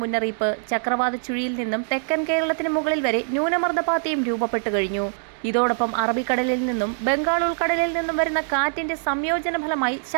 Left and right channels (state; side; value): silent; left; digital silence